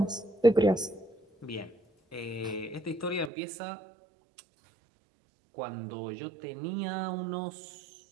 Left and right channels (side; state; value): left; drops out; at 3.3 s